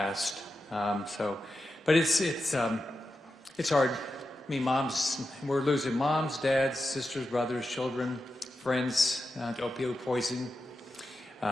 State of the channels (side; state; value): both; normal; correlation 0.90